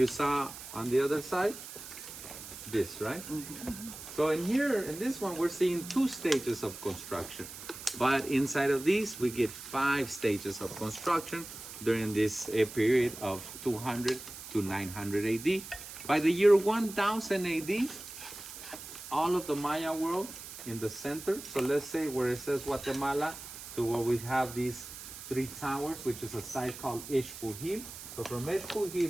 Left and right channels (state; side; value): noise; right; hiss, 12 dB below the sound